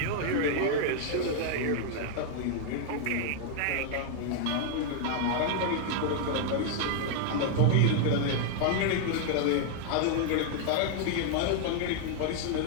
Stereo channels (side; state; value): both; different; correlation 0.00